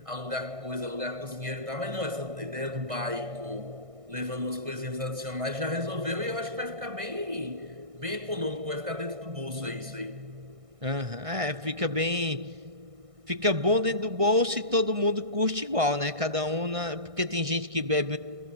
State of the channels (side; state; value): left; late; 1.6 ms